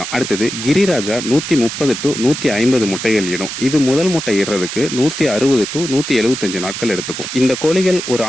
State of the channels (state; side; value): noise; right; hiss, 7 dB below the sound